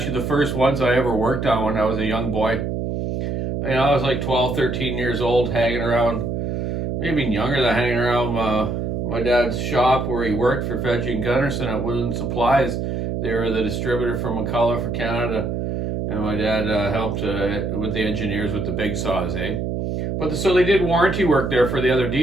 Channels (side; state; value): right; noise; hum, 2 dB below the sound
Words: the first ones I ever worked on when I was a young boy. I was like 12, 13 years old, hanging around, maybe younger than hanging around my dad's shop where he worked for Fedgie and Gunnarsson at Woodland Supplies. They were the distributor for McCullough for Canada, and my dad helped with the engineers with the big saws, so they did warranty work there for the other